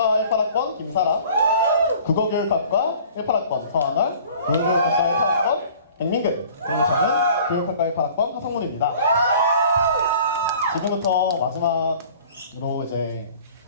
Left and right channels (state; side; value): inverted; both; correlation -0.49